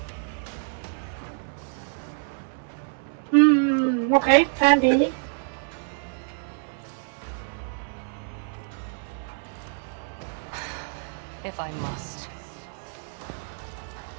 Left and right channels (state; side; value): silent; left; 60 dB below the other